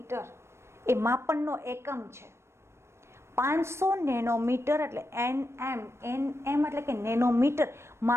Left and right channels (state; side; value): late; left; 0.13 ms